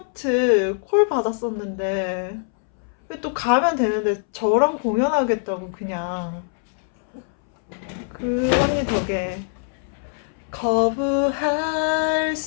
콜 받았었는데 또 가면 되는데 저랑 공연하겠다고 그냥. 그 언니 덕에 거부할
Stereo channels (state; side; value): silent; right; 64 dB below the other